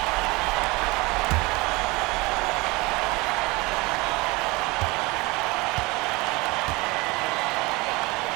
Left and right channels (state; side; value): quieter; left; 23.9 dB